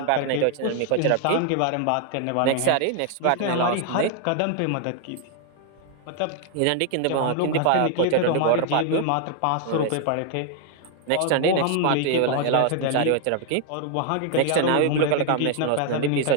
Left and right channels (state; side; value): different; both; correlation 0.00